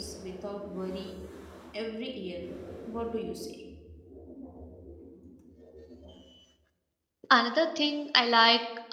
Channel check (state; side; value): identical; both; correlation 1.00